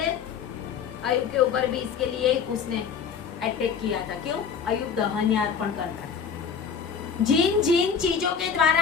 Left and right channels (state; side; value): quieter; right; 6.7 dB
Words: अयुब के ऊपर भी इसके लिए उसने अटैक किया था। क्यों? अयुब दहन अर्पण करता है। जिन जिन चीजों के द्वारा